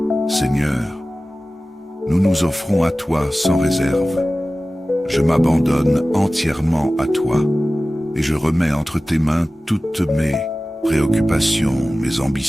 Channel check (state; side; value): normal; both; correlation 0.96